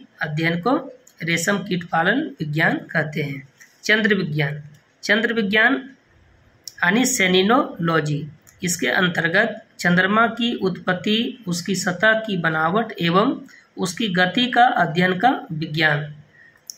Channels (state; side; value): identical; both; correlation 1.00